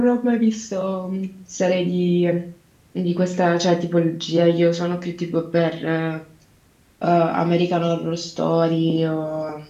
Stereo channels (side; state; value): both; identical; correlation 1.00